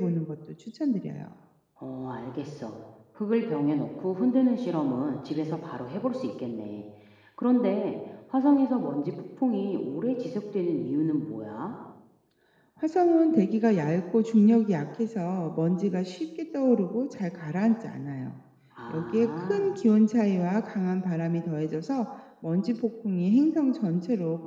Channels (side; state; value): both; identical; correlation 1.00